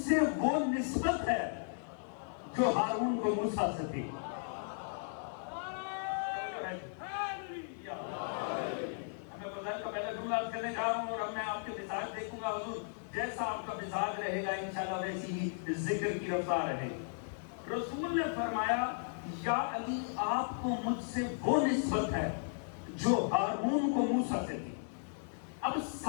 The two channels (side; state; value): right; silent; digital silence